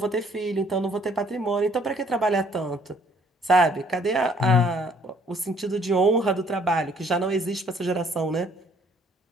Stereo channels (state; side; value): normal; both; correlation 0.61